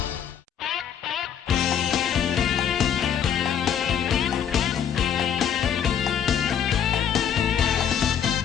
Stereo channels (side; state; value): right; quieter; 8.6 dB